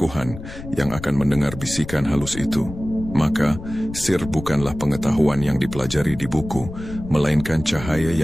yang akan mendengar bisikan halus itu. Maka, sir bukanlah pengetahuan yang dipelajari di buku, melainkan cahaya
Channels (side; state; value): left; noise; rumble, 11 dB below the sound